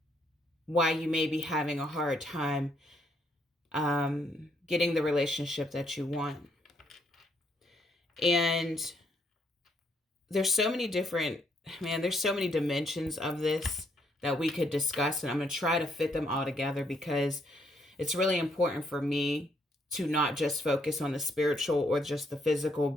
why you may be having a hard time getting the relationship that you want. And there's so many there's so many dimensions of this that we could discuss, and I'm going to try to fit them all together because it's really important for me to not just focus on the spiritual or just the physical,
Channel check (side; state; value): both; normal; correlation 0.72